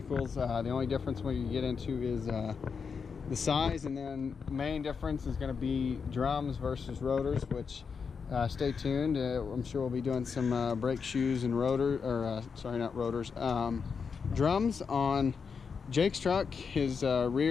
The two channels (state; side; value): quieter; right; 5.8 dB